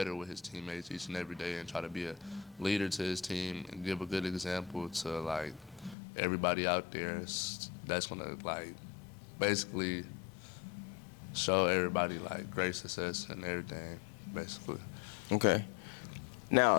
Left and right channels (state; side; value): drops out; right; at 6.0 s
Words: with his teammates each and every day and try to be a leader to his team and give a good example to like everybody out there. That's gonna like basically show everybody like great success and everything, basically. Okay.